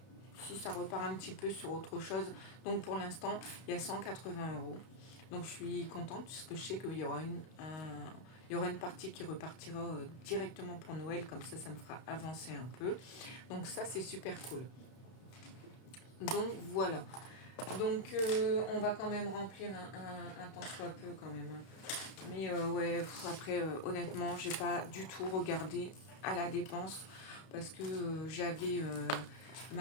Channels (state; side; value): late; right; 32 ms